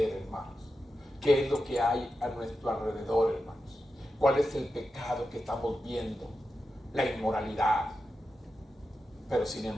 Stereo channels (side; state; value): both; normal; correlation 0.90